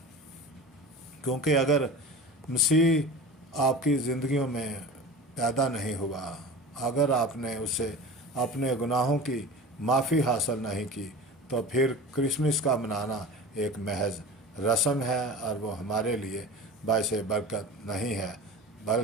کیونکہ اگر مسیح آپ کی زندگیوں میں پیدا نہیں ہوا، اگر آپ نے اسے اپنے گناہوں کی معافی حاصل نہیں کی، تو پھر کرسمس کا منانا ایک محض رسم ہے، اور وہ ہمارے لیے باعث برکت نہیں ہے۔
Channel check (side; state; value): both; normal; correlation 0.34